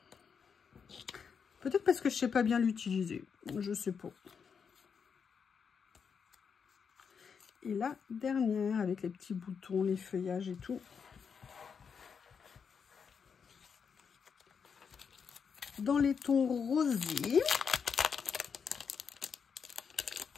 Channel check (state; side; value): quieter; right; 6.4 dB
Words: Peut-être parce que je ne sais pas bien l'utiliser. Je sais pas. Et la dernière, avec les petits boutons, les feuillages et tout. Dans les tons rosés.